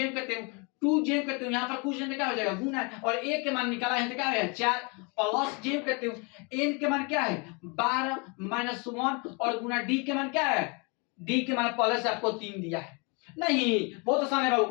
करते हैं 2 जेम करते हो, यहाँ पर कुछ जेम क्या हो जाएगा गुना, और a के मान निकाला है तो क्या है 4 प्लस जेम करते हो n के मान क्या है 12 माइनस 1 और गुना d के मान क्या है, d के मान पहले से आपको 3 दिया है नहीं। बहुत आसान है बाबू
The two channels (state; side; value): quieter; right; 31.9 dB